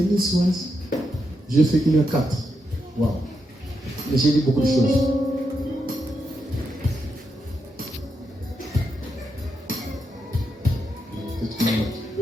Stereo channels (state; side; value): normal; both; correlation 0.84